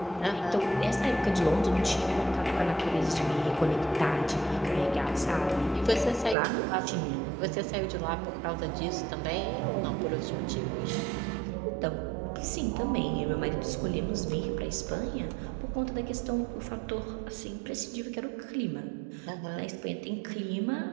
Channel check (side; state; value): left; drops out; at 6.4 s